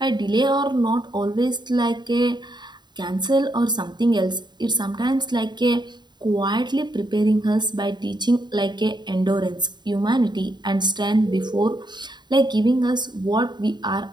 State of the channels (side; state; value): left; late; 0.21 ms